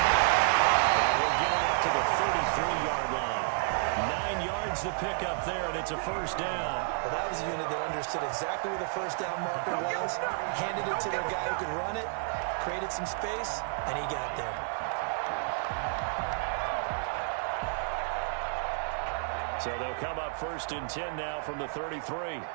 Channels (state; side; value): silent; left; 55 dB below the other